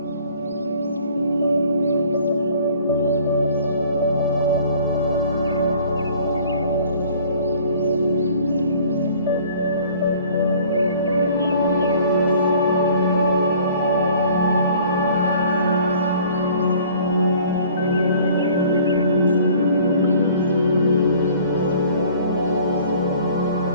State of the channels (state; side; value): inverted; both; correlation -0.53